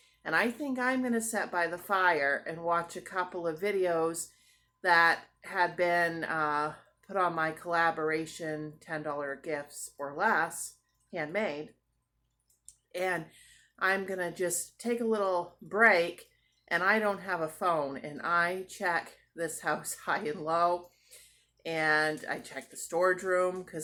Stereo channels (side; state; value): both; identical; correlation 1.00